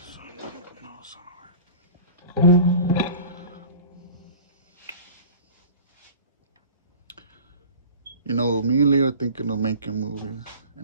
You know, me and Leo are thinking of making movies,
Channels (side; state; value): both; inverted; correlation -0.40